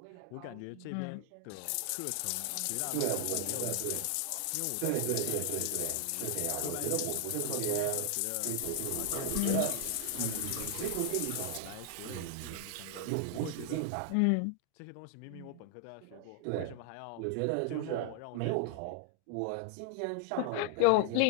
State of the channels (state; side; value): different; both; correlation 0.00